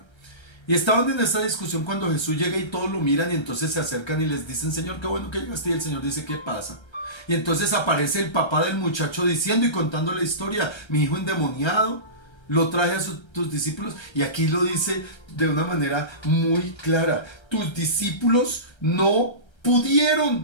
Y estaban en esa discusión cuando Jesús llega y todos lo miran y entonces se acercan y les dicen, Señor, qué bueno que llegaste. Y el Señor dice, ¿qué pasa? Y entonces aparece el papá del muchacho diciendo y contando la historia, mi hijo endemoniado lo traje a tus discípulos, y aquí lo dice de una manera muy clara. Tus discípulos no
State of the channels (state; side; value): late; right; 1.3 ms